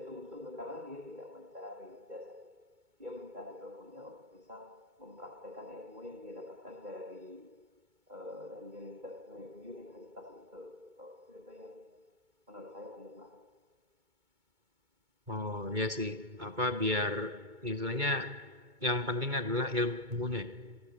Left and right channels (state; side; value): late; left; 2.2 ms